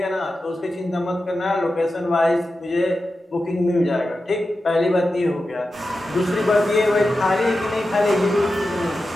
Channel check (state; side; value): normal; both; correlation 0.92